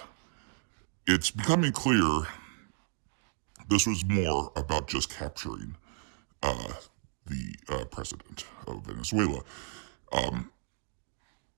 It's becoming clear this was more about just capturing the president of Venezuela.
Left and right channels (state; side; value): silent; left; 55 dB below the other